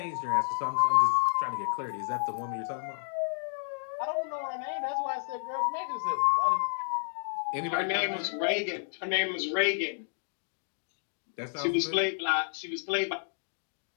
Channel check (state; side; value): silent; right; digital silence